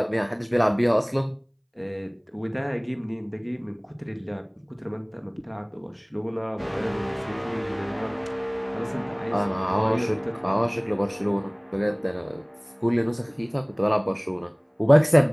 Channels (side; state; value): both; identical; correlation 1.00